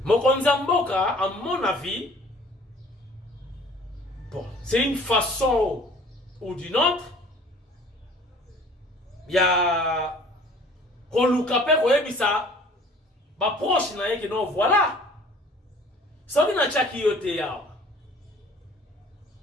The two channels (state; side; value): normal; both; correlation 0.51